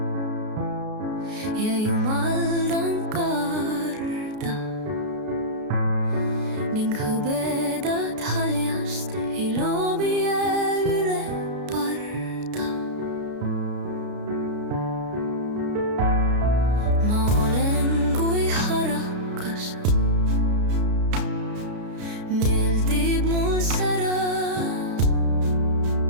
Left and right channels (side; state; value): left; late; 33 ms